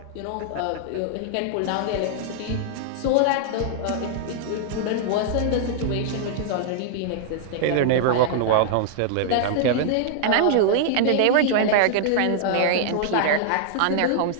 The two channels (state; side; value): different; both; correlation -0.01